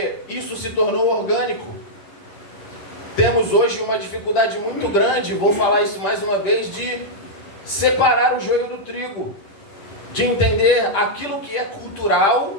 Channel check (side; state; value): right; late; 10 ms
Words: isso se tornou orgânico. Temos hoje uma dificuldade muito grande, vou falar isso mais uma vez, de separar o joio do trigo, de entender aquilo que é